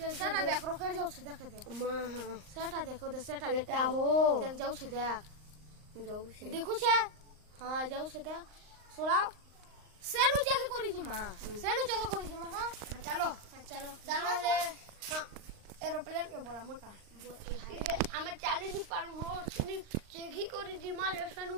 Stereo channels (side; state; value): left; late; 39 ms